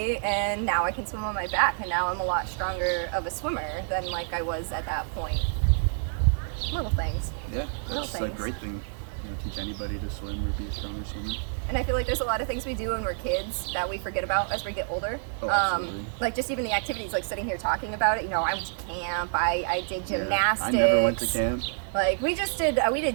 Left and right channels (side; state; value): left; silent; 59 dB below the other